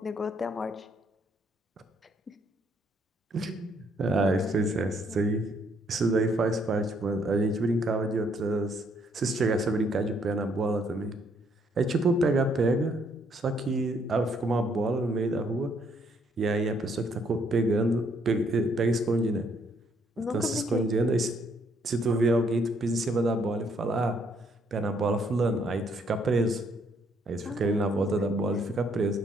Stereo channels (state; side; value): normal; both; correlation 0.69